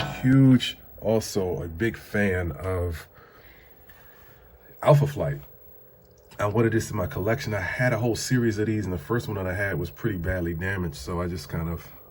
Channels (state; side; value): identical; both; correlation 1.00